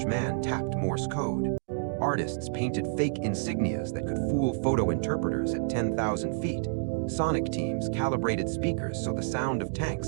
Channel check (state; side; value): silent; left; digital silence